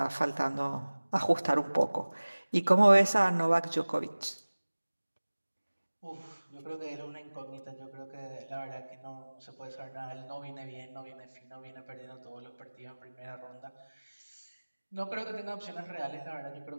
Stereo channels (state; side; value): inverted; both; correlation -1.00